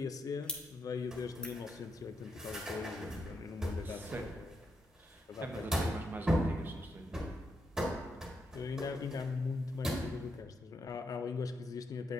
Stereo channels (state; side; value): normal; both; correlation 0.81